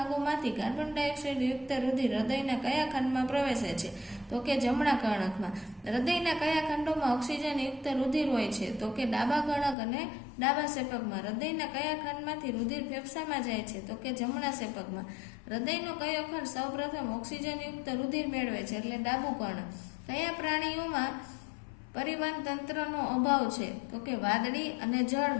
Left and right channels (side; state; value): right; drops out; at 9.8 s